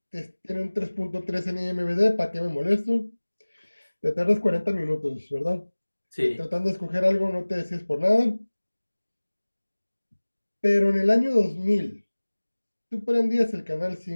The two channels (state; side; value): inverted; both; correlation -1.00